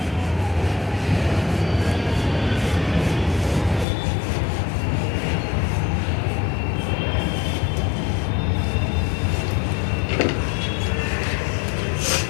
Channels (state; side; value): drops out; right; at 3.9 s